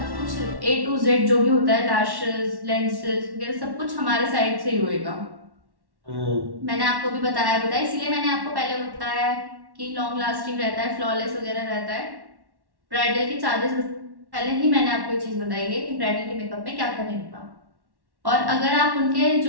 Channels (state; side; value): late; left; 1.1 ms